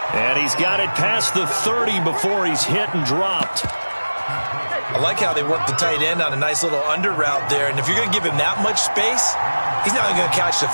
And he's got it past the 30 before he's hit and dropped. I like how they work the tight end on a nice little under route there. And if you're going to give him that much space, he's not even going to catch the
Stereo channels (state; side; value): inverted; both; correlation -1.00